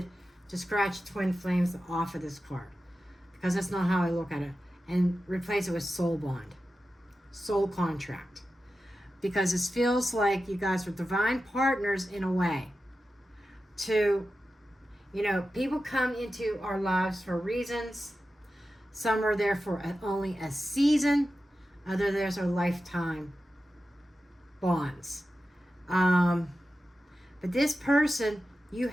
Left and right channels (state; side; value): normal; both; correlation 0.93